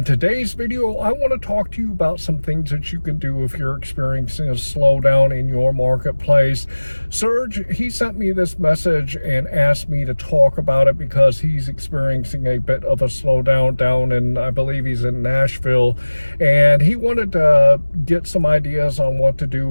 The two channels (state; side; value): inverted; both; correlation -1.00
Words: today's video, I want to talk to you about some things that you can do if you're experiencing a slowdown in your marketplace. Serge, he sent me this message and asked me to talk about it because he's experiencing a bit of a slowdown down in, I believe he's in Nashville, and he wanted to get some ideas on what to